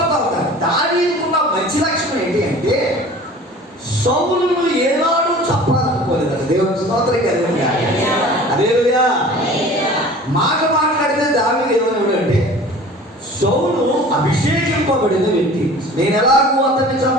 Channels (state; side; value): normal; both; correlation 0.43